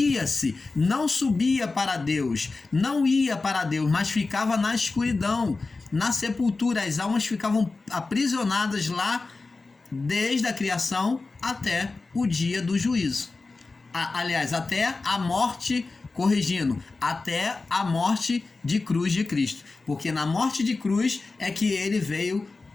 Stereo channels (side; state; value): right; quieter; 3.8 dB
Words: não subia para Deus, não ia para Deus, mas ficava na escuridão, na sepultura. As almas ficavam aprisionadas lá desde a criação até o dia do juízo. Aliás, até a morte, corrigindo, até a morte de cruz de Cristo. Porque na morte de cruz é que ele veio